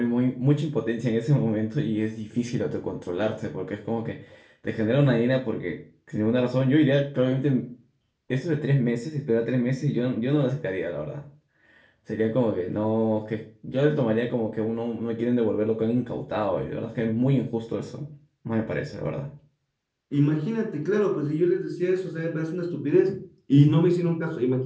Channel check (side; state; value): both; identical; correlation 1.00